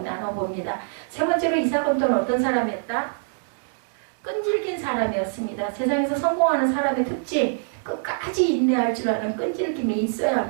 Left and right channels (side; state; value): left; silent; digital silence